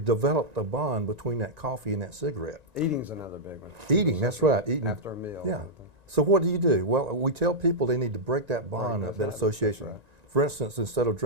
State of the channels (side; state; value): left; late; 1.9 ms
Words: developed a bond between that coffee and that cigarette. Eating's another big one. Eating, that's right. Eating. After a meal. Yeah. So what do? Well, we tell people they need to break that bond up, that association. Right. For instance, instead of